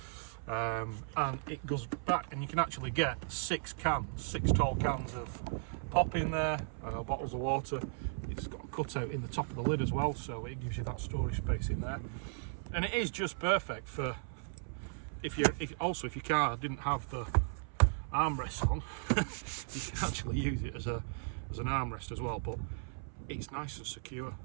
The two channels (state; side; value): silent; left; 54 dB below the other